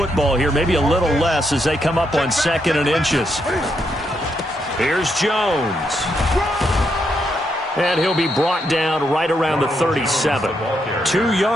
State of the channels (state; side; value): normal; both; correlation 0.79